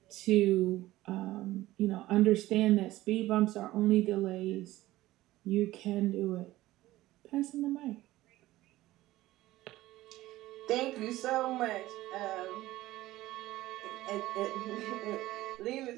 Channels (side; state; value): left; quieter; 16.6 dB